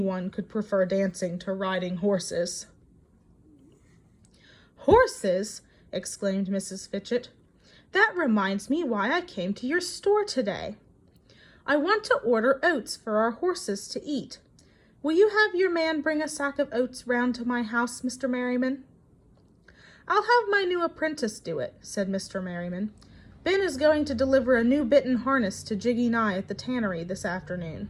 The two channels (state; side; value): identical; both; correlation 1.00